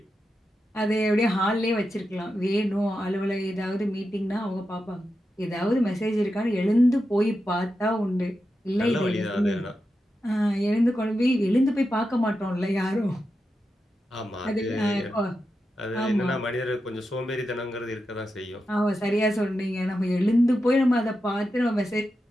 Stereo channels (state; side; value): normal; both; correlation 0.89